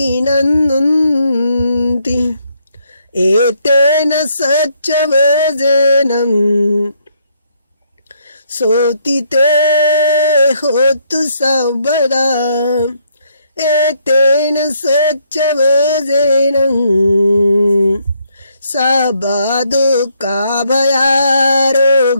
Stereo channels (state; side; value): inverted; both; correlation -0.71